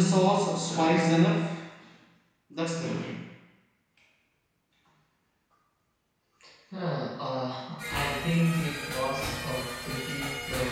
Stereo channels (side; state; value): both; identical; correlation 1.00